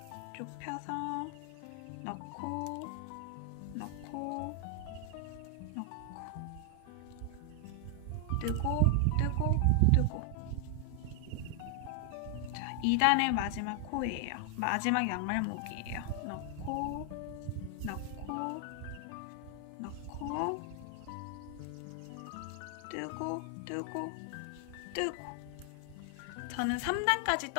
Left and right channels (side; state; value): both; different; correlation 0.00